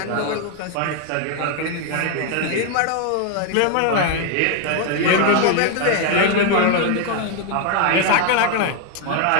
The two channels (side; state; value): both; different; correlation 0.01